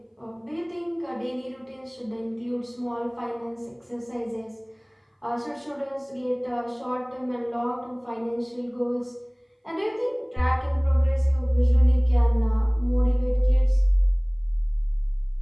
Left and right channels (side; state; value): both; identical; correlation 1.00